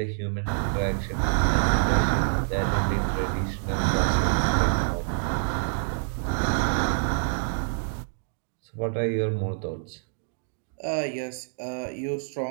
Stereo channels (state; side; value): silent; left; digital silence